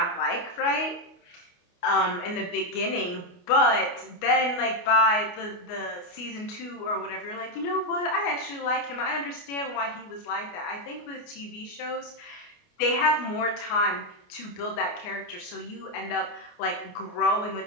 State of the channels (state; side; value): late; right; 28 ms